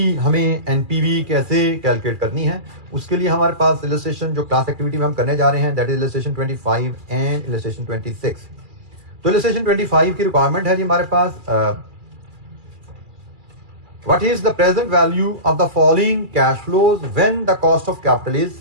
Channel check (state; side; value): late; left; 2.4 ms